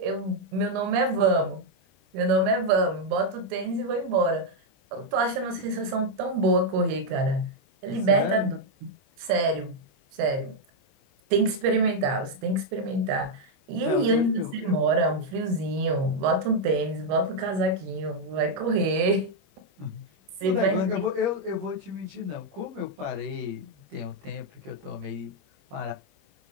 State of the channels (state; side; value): late; left; 21 ms